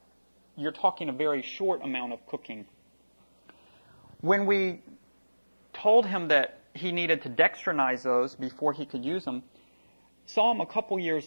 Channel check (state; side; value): inverted; both; correlation -1.00